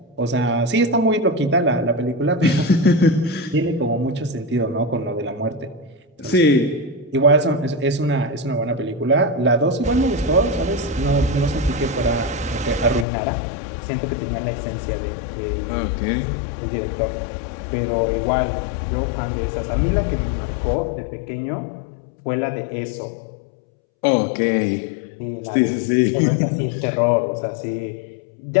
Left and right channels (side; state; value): right; drops out; at 13.1 s